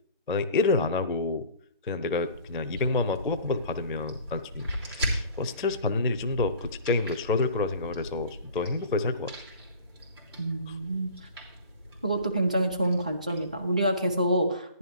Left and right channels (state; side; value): inverted; both; correlation -0.45